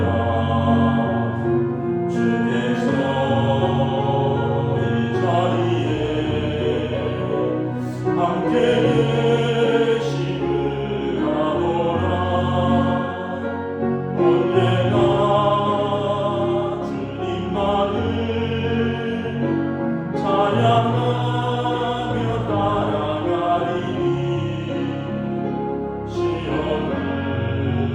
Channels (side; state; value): both; identical; correlation 1.00